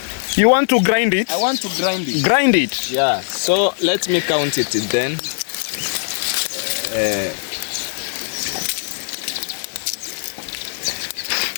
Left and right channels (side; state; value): right; silent; 66 dB below the other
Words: You want to grind it? I want to grind it. Grind it. Yeah. So let me count it then.